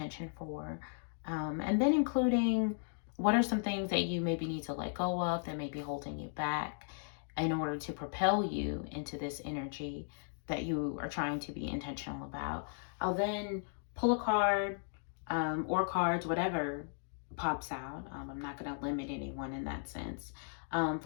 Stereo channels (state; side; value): silent; right; digital silence